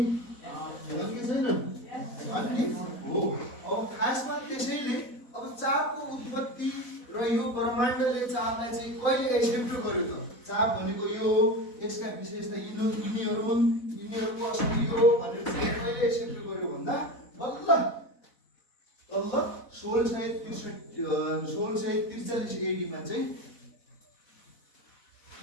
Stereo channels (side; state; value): right; late; 4.1 ms